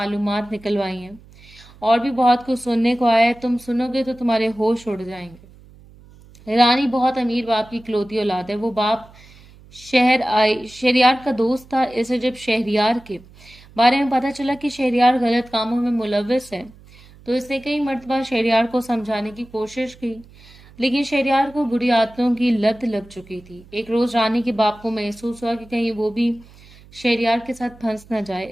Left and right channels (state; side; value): noise; right; hum, 24 dB below the sound